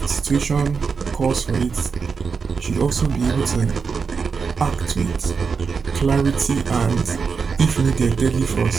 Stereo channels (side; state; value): left; quieter; 5.4 dB